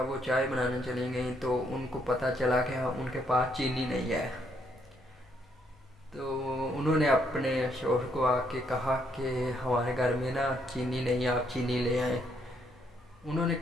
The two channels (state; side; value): normal; both; correlation 0.72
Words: وہ چائے بنانے چلی گئیں تو ان کو پتہ چلا کہ ان کے پاس چینی نہیں ہے۔ تو انہوں نے اپنے شوہر کو آ کے کہا کہ ہمارے گھر میں نا چینی نہیں ہے، آپ چینی لے آئیں۔ انہوں نے